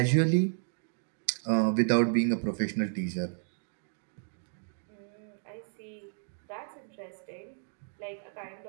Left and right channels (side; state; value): left; silent; 56 dB below the other